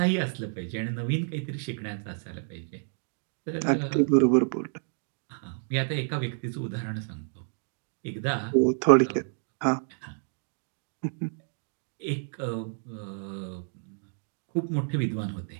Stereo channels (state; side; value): silent; left; digital silence